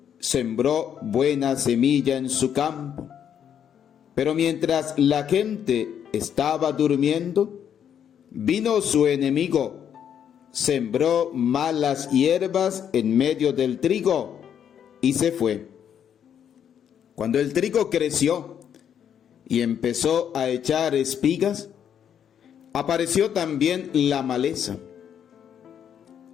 sembró buena semilla en su campo, pero mientras la gente estaba durmiendo, vino su enemigo, sembró malas hierbas en medio del trigo y se fue. Cuando el trigo creció y empezó a echar espigas, apareció también la maleza.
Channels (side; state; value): right; quieter; 8.8 dB